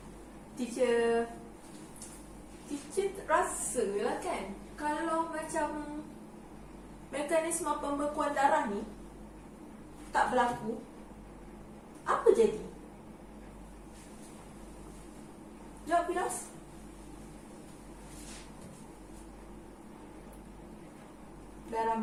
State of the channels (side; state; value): both; identical; correlation 1.00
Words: Teacher rasa lah kan, kalau macam mekanisme pembekuan darah ni tak berlaku, apa jadi? Jawab, Firaus. Darah